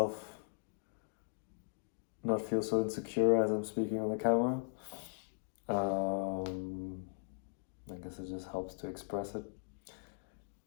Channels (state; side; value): silent; right; digital silence